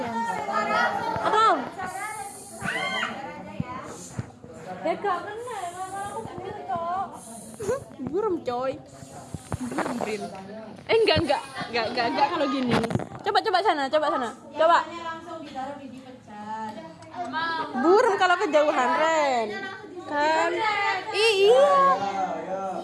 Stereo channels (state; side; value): identical; both; correlation 1.00